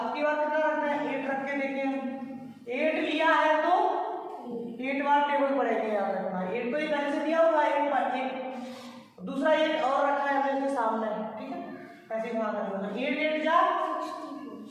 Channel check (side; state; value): both; identical; correlation 1.00